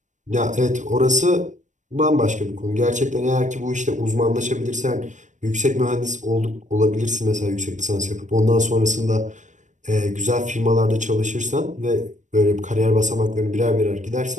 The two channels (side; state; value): left; late; 0.35 ms